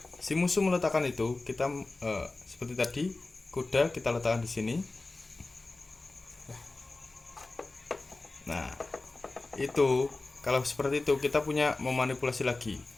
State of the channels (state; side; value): quieter; right; 3.3 dB